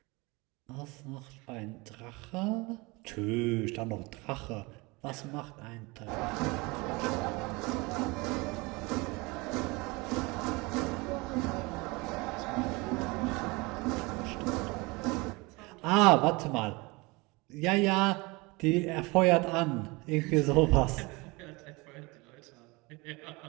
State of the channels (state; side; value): quieter; left; 25.1 dB